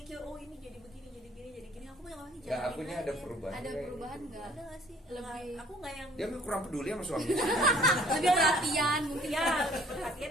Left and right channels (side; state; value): both; normal; correlation 0.56